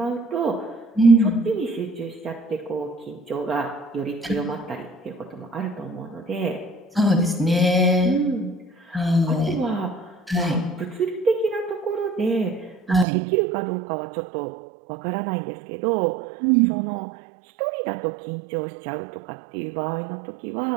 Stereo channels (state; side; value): drops out; left; at 13.1 s